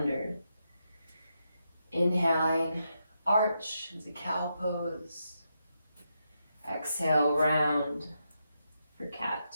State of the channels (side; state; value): both; inverted; correlation -0.83